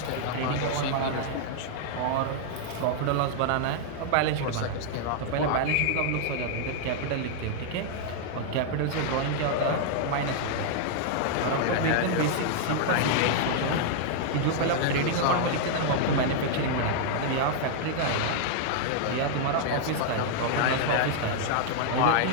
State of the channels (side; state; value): both; different; correlation -0.01